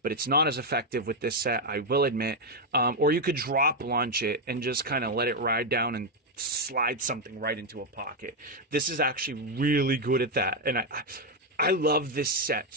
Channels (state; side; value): normal; both; correlation 0.03